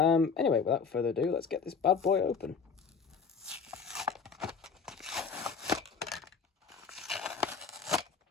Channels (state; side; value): quieter; right; 5.6 dB